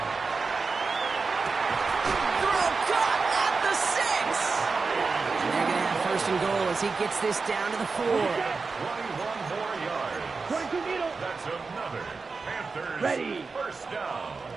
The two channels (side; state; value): left; quieter; 4.4 dB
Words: Throw caught at the 6. And they're going to have 1st and goal as he gets this down to the 4. 21 more yards. 22 middle. That's another Panthers Ready. 1st down.